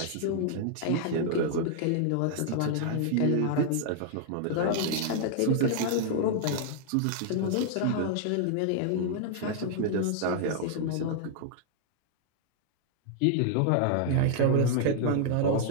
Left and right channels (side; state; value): both; different; correlation -0.01